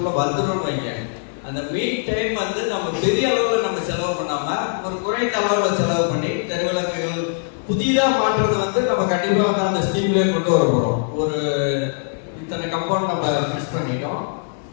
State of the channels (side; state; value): right; silent; digital silence